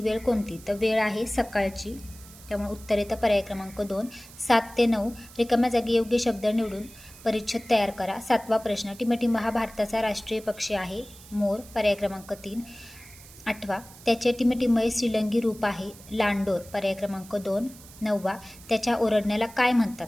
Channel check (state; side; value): noise; right; hiss, 20 dB below the sound